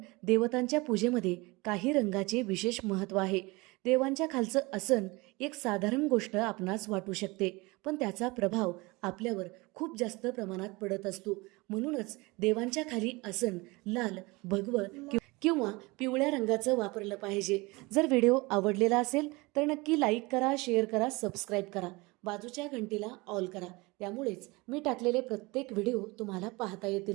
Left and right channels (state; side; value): quieter; left; 24.2 dB